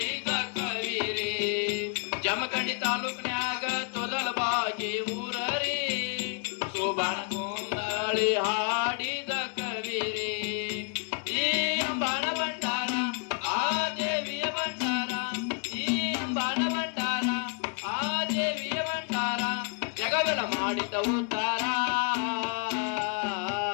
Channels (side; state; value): right; quieter; 37.2 dB